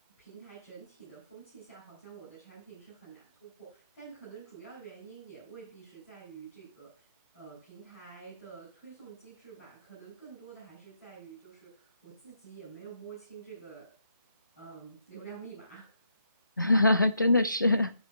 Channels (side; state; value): both; inverted; correlation -0.77